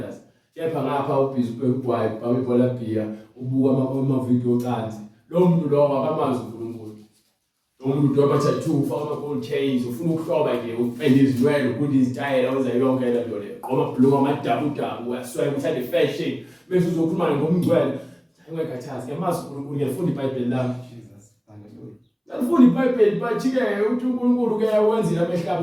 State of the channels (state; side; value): identical; both; correlation 1.00